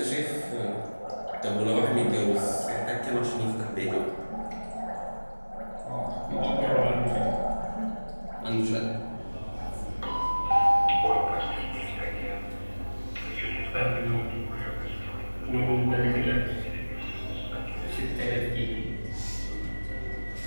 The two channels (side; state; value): both; inverted; correlation -1.00